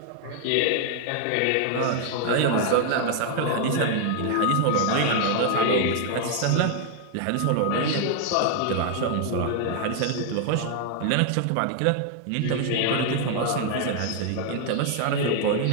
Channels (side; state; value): both; different; correlation 0.00